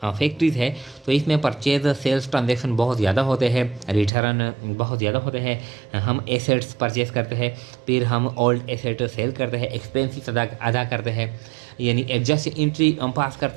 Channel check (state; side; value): drops out; left; at 4.1 s